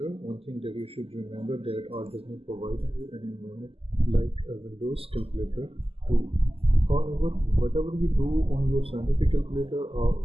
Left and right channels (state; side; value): late; left; 0.28 ms